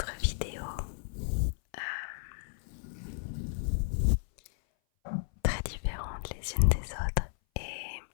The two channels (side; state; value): right; silent; 56 dB below the other